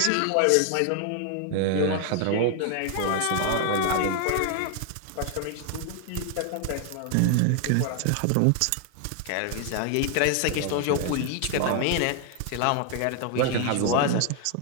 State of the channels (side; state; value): both; different; correlation 0.00